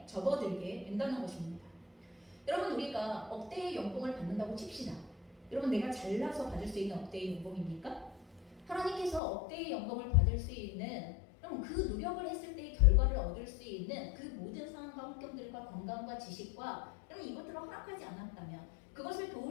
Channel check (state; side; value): drops out; right; at 9.2 s